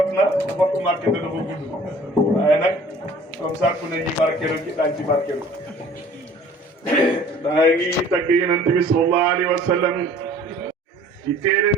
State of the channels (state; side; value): normal; both; correlation 0.51